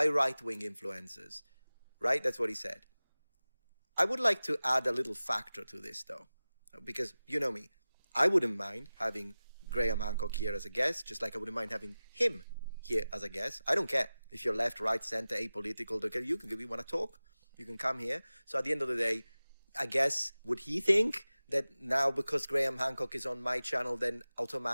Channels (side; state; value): both; inverted; correlation -0.97